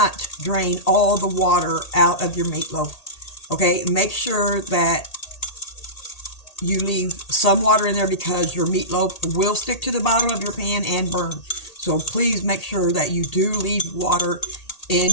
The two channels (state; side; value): late; right; 1.8 ms